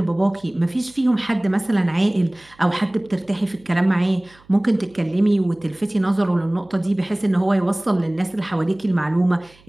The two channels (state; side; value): noise; right; hum, 29 dB below the sound